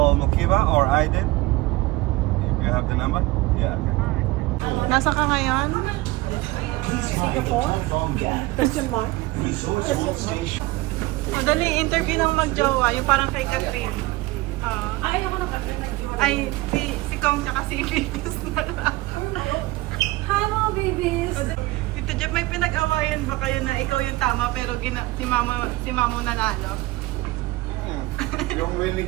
Mokiba or Aiden if you have the number. Yeah, okay. Nasa ka ngayon? Singapore? Question mark? Dali, interview ng magjowa, yung parang kay Catherine. Ay, ako ng Catherine. Ay, si Kong tsaka si Babies na lang. Hi mga babies! Tito Jeff, may pinag-awayan ba kayo na ikaw yung tama pero si Mamo nanalo? Yung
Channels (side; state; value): left; quieter; 20.1 dB